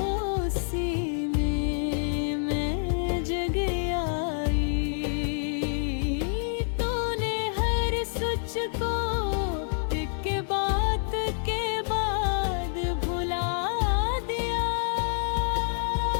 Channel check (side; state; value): right; silent; digital silence